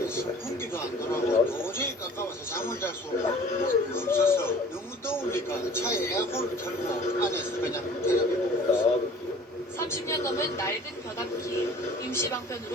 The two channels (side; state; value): both; normal; correlation 0.47